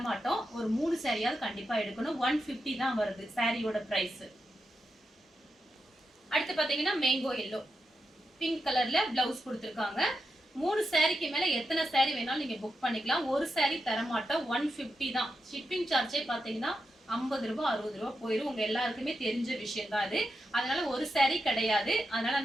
மாட்டோம், ஒரு 3 சாரியாவது கண்டிப்பா எடுக்கணும். 150 தான் வருது சாரியோட பிரைஸ். அடுத்து பாத்தீங்கன்னா மேங்கோ எல்லோ பிங்க் கலர்ல பிளவுஸ் கொடுத்துருக்காங்க. 3 சாரிக்கு மேல எத்தனை சாரி வேணாலும் நீங்க புக் பண்ணிக்கலாம். ஒரு சாரி தர மாட்டோம், 150 தான். ஷிப்பிங் சார்ஜே பாத்தீங்கன்னா 50 ரூபாய் 60 ரூபாய் போயிடும். உங்க எல்லாருக்குமே தெரிஞ்ச விஷயம் தான் அது. அதனால ஒரு சாரி கிடையாது. அதனால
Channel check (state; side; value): normal; both; correlation 0.87